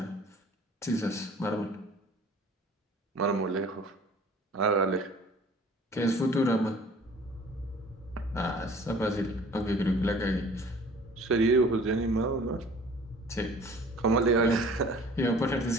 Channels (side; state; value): both; normal; correlation 0.49